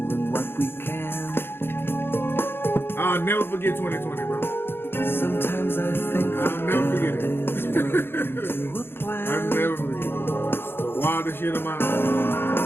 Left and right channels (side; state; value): right; late; 0.11 ms